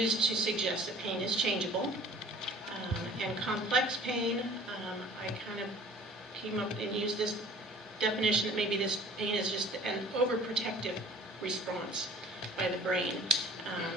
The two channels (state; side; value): normal; both; correlation 0.49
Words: to suggest that pain is changeable. And complex pain, I kind of came up and used this definition that maybe this pain is just an overprotective response by the brain,